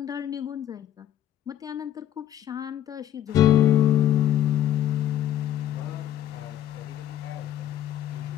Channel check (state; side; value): quieter; right; 11.5 dB